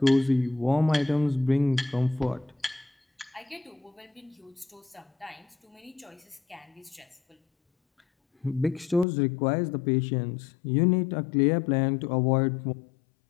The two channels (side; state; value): right; drops out; at 9.1 s